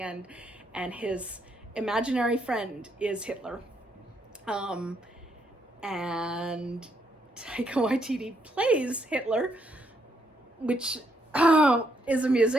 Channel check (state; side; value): normal; both; correlation 0.75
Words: and his imaginary friend is Hitler, and Taika Waititi plays Hitler, which is